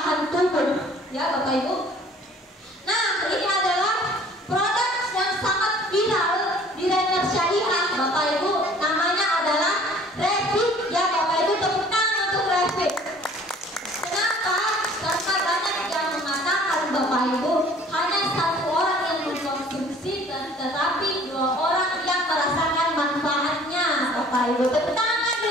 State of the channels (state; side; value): normal; both; correlation 0.52